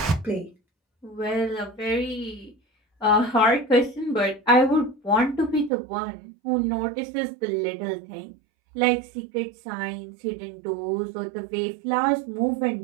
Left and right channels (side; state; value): left; drops out; at 5.7 s